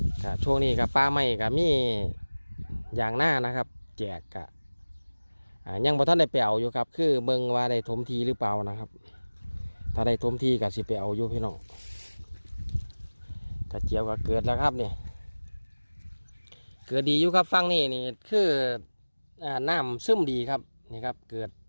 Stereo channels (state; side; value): inverted; both; correlation -1.00